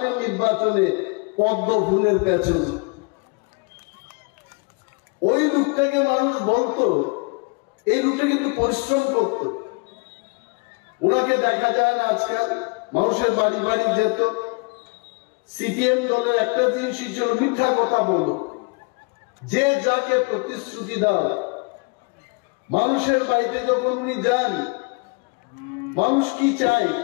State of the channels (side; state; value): right; quieter; 31.3 dB